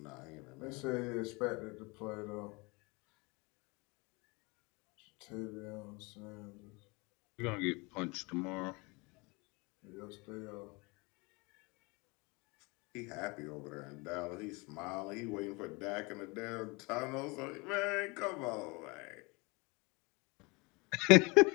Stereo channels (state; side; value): quieter; right; 27.2 dB